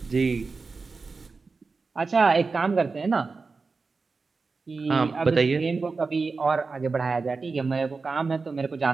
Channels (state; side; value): quieter; left; 4.3 dB